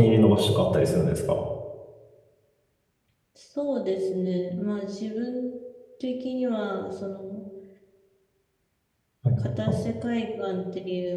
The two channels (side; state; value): both; identical; correlation 1.00